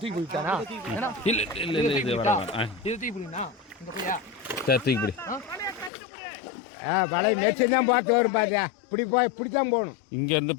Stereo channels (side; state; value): right; drops out; at 5.9 s